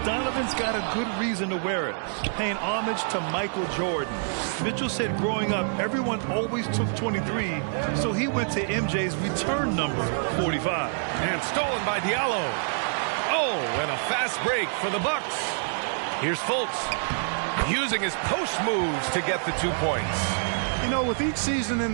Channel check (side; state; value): left; silent; 60 dB below the other